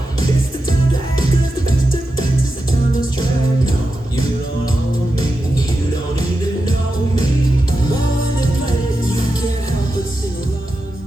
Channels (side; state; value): both; normal; correlation 0.90